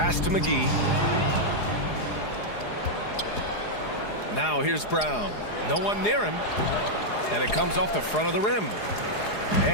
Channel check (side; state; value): right; late; 4.8 ms